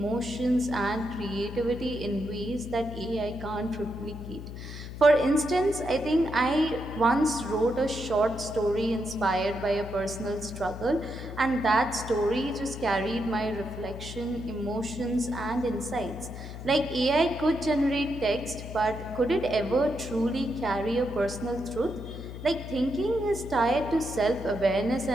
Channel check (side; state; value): left; noise; hum, 10 dB below the sound